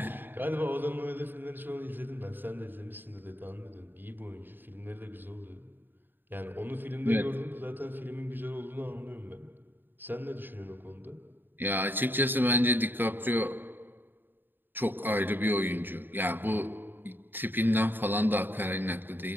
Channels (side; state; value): left; late; 0.094 ms